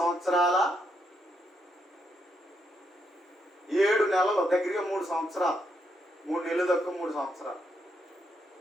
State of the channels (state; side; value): normal; both; correlation 0.78